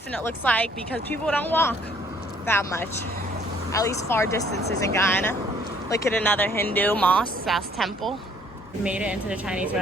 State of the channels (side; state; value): both; normal; correlation 0.61